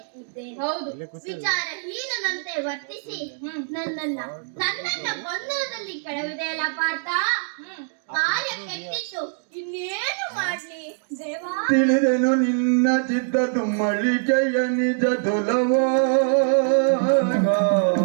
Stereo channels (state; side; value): silent; left; digital silence